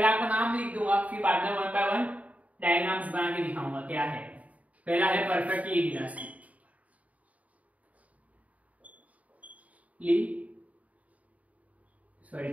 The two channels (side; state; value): left; late; 0.070 ms